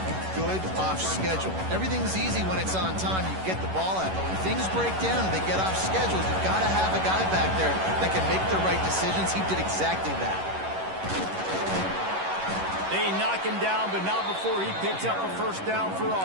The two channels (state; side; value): late; left; 11 ms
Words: good off schedule. Everything's easy when it's on time. You get the ball out, but when things break down and they get off schedule, you've got to have a guy back there that can make the right decisions. He did exactly that. They knock him down, but not before he picks up a first down for